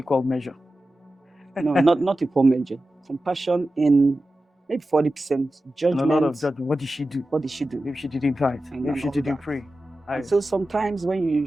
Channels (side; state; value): both; normal; correlation 0.93